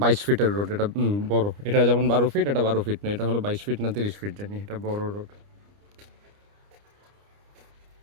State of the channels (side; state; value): left; late; 29 ms